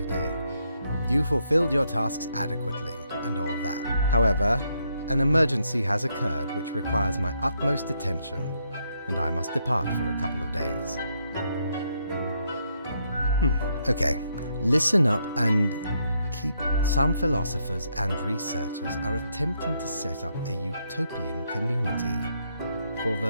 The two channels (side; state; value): both; inverted; correlation -0.76